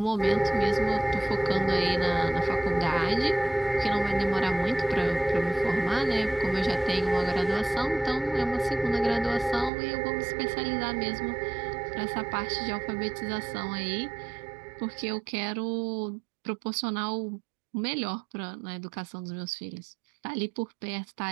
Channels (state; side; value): drops out; left; at 9.7 s